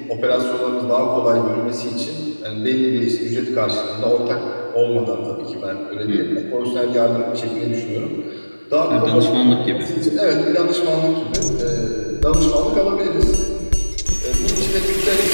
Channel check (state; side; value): inverted; both; correlation -1.00